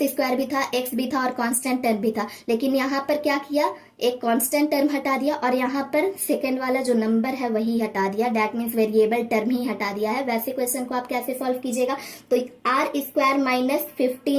भी था, एक्स भी था और कांस्टेंट भी था, लेकिन यहाँ पर क्या किया, एक कांस्टेंट टर्म हटा दिया और यहाँ पर सेकंड वाला जो नंबर है वही हटा दिया, दैट मीन्स वेरिएबल टर्म ही हटा दिया है। वैसे क्वेश्चन को आप कैसे सॉल्व कीजिएगा, तो आर स्क्वायर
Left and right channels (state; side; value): identical; both; correlation 1.00